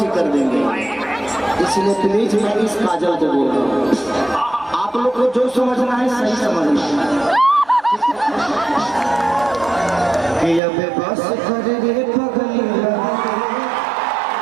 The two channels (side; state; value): left; drops out; at 10.6 s